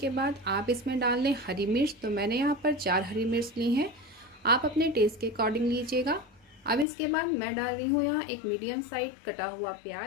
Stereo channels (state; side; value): drops out; right; at 6.9 s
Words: बाद आप इसमें डाल लें हरी मिर्च। तो मैंने यहाँ पर 4 हरी मिर्च ली हैं। आप अपने टेस्ट के अकॉर्डिंग लीजिएगा। अब इसके बाद मैं डाल रही हूँ यहाँ एक मीडियम साइज कटा हुआ